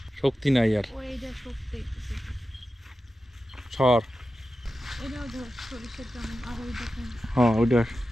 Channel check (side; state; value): both; normal; correlation 0.92